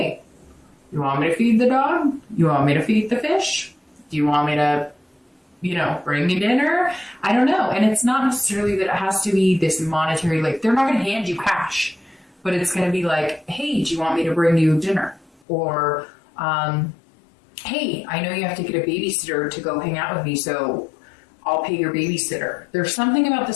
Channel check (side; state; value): right; drops out; at 15.4 s